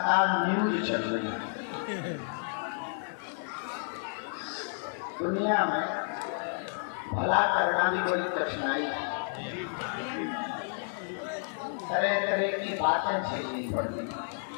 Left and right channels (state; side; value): silent; right; digital silence